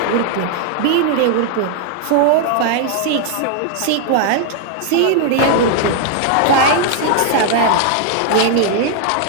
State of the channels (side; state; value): both; different; correlation 0.00